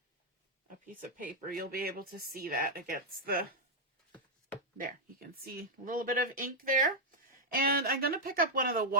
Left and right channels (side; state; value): both; normal; correlation -0.01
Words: a piece of paper, you'll be able to see that against the, there, you can see a little bit of ink there. And I'm going to pick up one of the